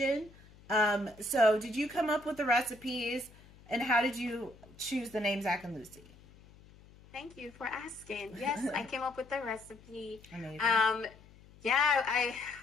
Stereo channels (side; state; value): left; noise; hum, 23 dB below the sound